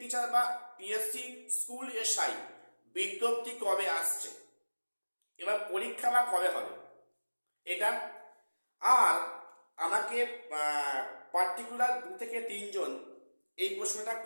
টিচার বা পিএসসি স্কুল এসআই বিজ্ঞপ্তি কবে আসছে, এবার পরীক্ষা বা কবে হবে এটা। আর আমাকে পার্টিকুলার 2 থেকে 3 জন এই প্রশ্নটা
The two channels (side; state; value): both; inverted; correlation -1.00